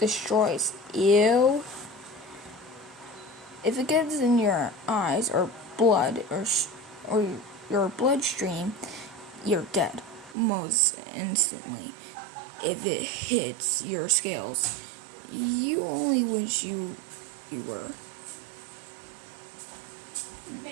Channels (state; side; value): drops out; left; at 10.4 s